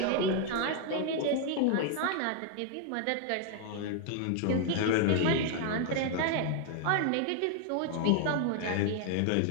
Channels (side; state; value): both; different; correlation 0.00